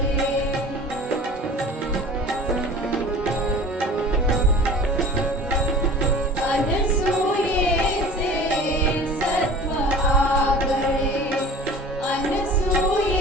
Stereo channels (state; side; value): normal; both; correlation 0.42